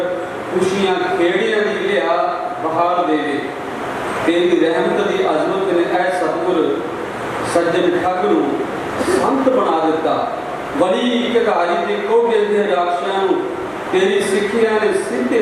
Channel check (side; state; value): both; identical; correlation 1.00